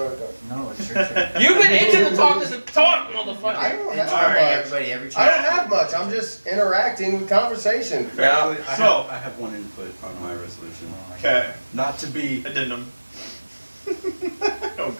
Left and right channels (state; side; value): inverted; both; correlation -1.00